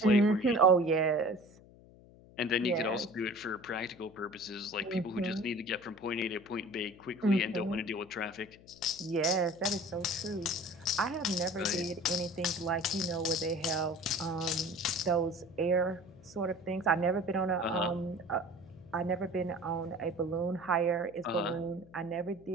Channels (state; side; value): noise; left; hum, 23 dB below the sound